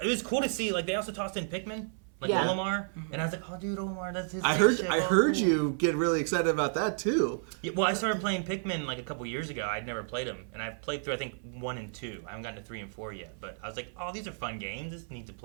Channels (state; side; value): silent; left; 57 dB below the other